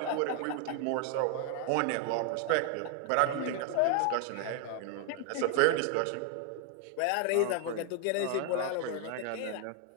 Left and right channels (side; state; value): both; different; correlation 0.00